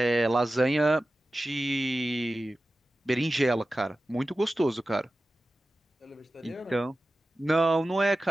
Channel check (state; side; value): normal; both; correlation 0.95